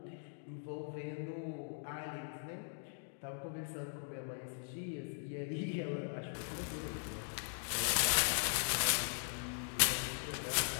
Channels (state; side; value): silent; right; digital silence